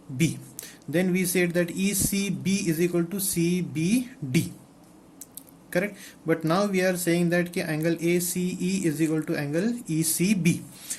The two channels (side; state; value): both; identical; correlation 1.00